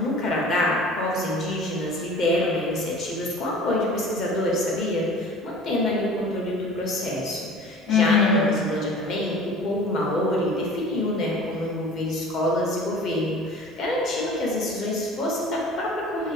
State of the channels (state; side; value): normal; both; correlation 0.43